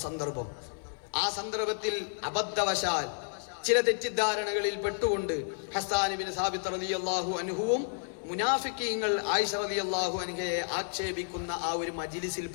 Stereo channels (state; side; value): silent; right; 57 dB below the other